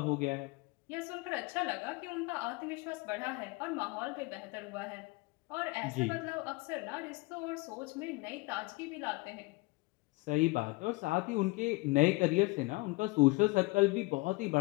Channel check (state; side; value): quieter; right; 24.2 dB